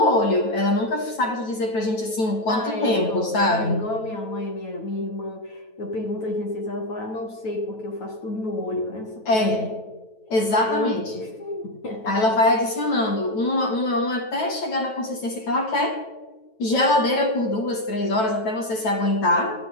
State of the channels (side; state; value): right; late; 9.1 ms